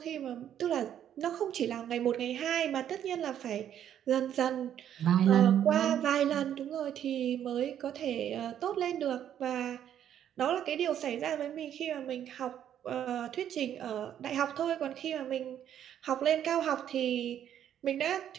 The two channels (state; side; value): quieter; left; 10.1 dB